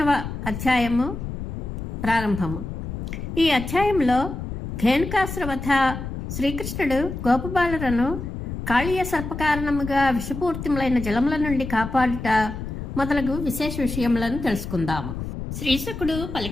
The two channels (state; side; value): noise; left; rumble, 7 dB below the sound